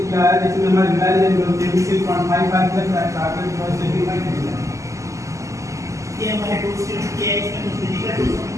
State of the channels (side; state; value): left; late; 0.15 ms